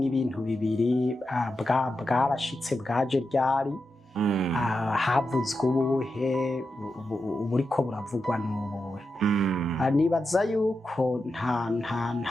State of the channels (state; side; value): normal; both; correlation 0.89